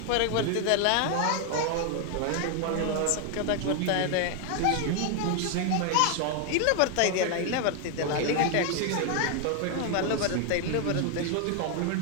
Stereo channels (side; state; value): both; different; correlation 0.01